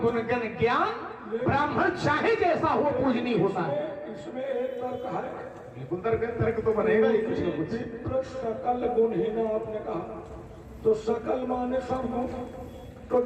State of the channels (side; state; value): both; identical; correlation 1.00